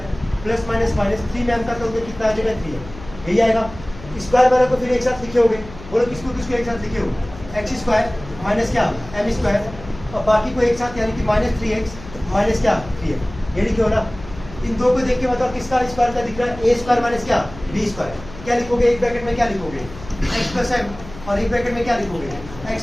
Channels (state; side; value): noise; left; hum, 16 dB below the sound